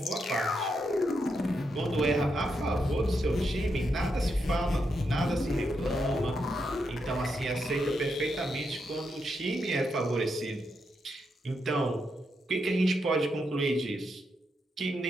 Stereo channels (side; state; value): both; normal; correlation 0.82